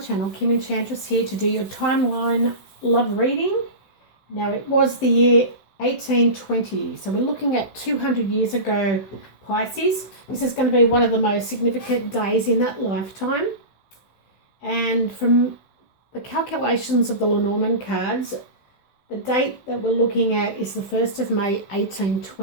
Kim Enchantress here to do your timeline love reading. Now it was the year 1820, so we're looking at 200 years ago, Pisces. This is going to be one of the most significant days in that lifetime. And from the calculations of the Lenormand cards, the date that we're looking at is the 1st of May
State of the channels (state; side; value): late; right; 16 ms